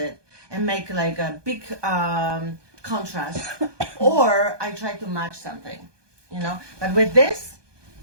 and make like a big contrast, or I try to match something, But with this,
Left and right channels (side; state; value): left; late; 1.2 ms